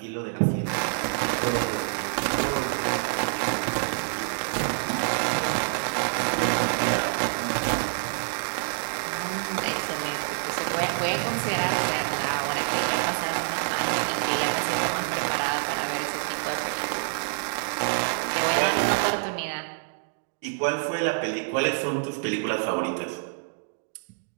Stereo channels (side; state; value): left; silent; digital silence